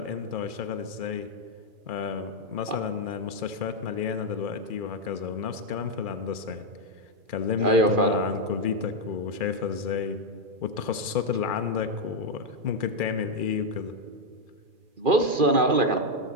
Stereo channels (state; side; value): late; left; 2.4 ms